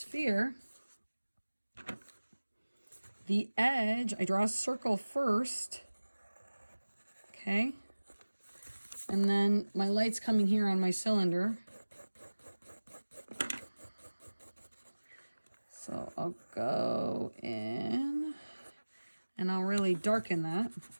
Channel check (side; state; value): both; inverted; correlation -1.00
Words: the edge, I draw a circle first, okay, and then my light's coming here on my cylinder. So I'll go in, and I'll really darken that.